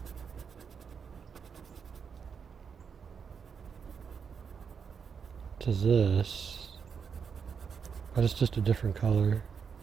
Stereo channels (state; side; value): quieter; left; 6.4 dB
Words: to this, but it's just a different color.